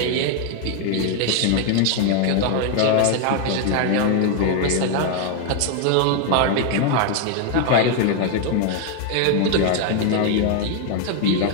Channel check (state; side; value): different; both; correlation 0.00